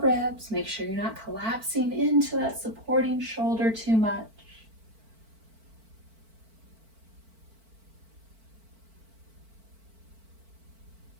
ribs. Make sure you're not collapsing into that supporting shoulder too much.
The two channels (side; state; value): left; late; 4.5 ms